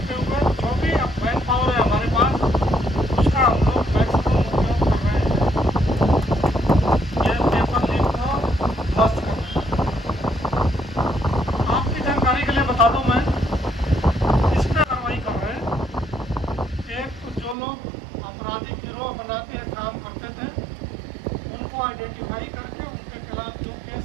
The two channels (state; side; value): drops out; left; at 17.6 s